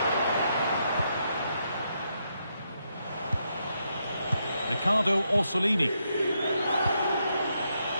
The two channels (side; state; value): both; inverted; correlation -0.80